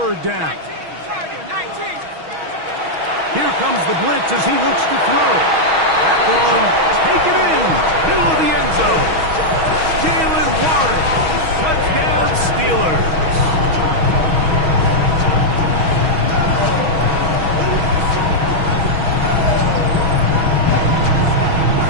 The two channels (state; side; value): late; left; 6.3 ms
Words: down. Here comes the blitz as he looks to throw. That one taken in, middle of the end zone. Jalen Warren, touchdown Steelers.